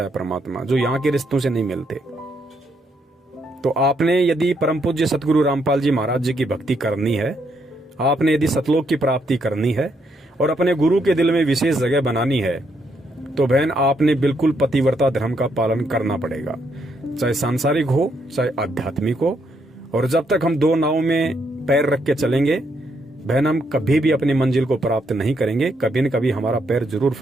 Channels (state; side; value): normal; both; correlation 0.75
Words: है परमात्मा, जो यहाँ के रिश्तों से नहीं मिलते। तो आपने यदि परम पूज्य सतगुरु रामपाल जी महाराज जी की भक्ति करनी है, आपने यदि सतलोक की प्राप्ति करनी है और अपने गुरु के दिल में विशेष जगह बनानी है, तो बहन आपने बिल्कुल पतिव्रता धर्म का पालन करना पड़ेगा, चाहे सांसारिक हो चाहे आध्यात्मिक हो। और जब तक हम दो नाव में पैर रख के चलेंगे बहन, हम कभी भी अपनी मंजिल को प्राप्त नहीं करेंगे, कभी न कभी हमारा पैर जरूर